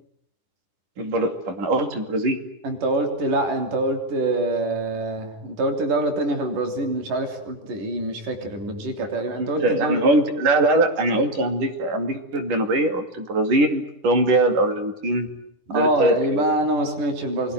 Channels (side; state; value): left; late; 10 ms